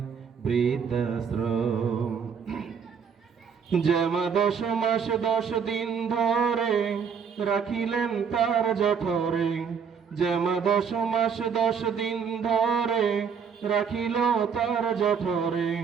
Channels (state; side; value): quieter; left; 6.7 dB